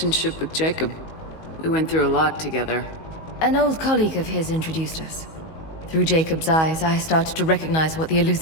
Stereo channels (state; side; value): late; right; 19 ms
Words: with Jacob? We went through a lot together. An old colleague of his introduced us. Through Jacob's eyes, I started to recognize what the